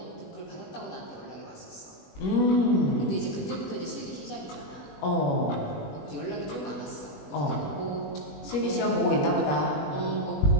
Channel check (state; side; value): late; right; 21 ms